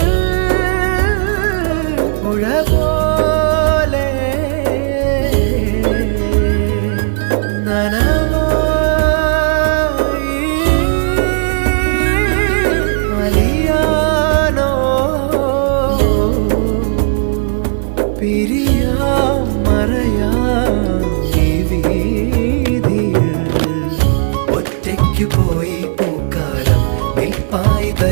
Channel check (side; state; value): left; silent; digital silence